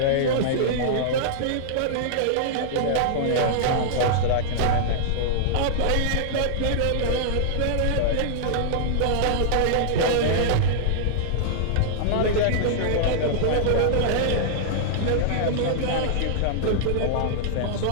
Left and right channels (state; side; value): different; both; correlation -0.02